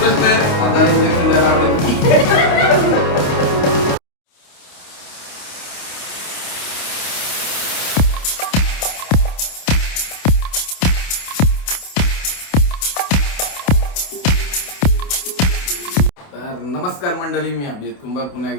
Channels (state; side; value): late; right; 28 ms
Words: आहे. दादाला इंजेक्शन द्यायला आवडेल. नमस्कार मंडळी, मी अभिजित कुंभार पुन्हा